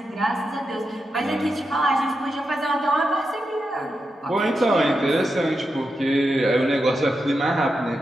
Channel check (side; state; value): both; normal; correlation 0.87